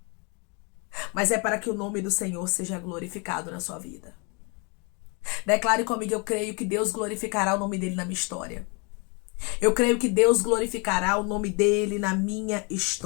Mas é para que o nome do Senhor seja glorificado na sua vida. Declare comigo, eu creio que Deus glorificará o nome dele na minha história. Eu creio que Deus glorificará o nome dele na minha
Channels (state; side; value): quieter; right; 32.6 dB